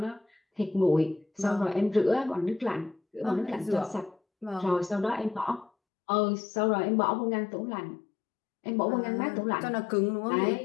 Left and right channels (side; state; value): right; drops out; at 5.7 s